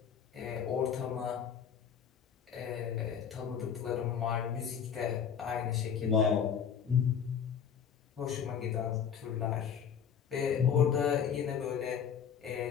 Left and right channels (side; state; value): right; quieter; 7.7 dB